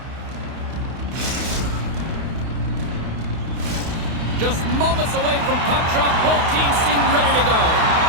Just moments away from puck drop, both teams seem ready to go.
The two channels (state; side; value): late; left; 32 ms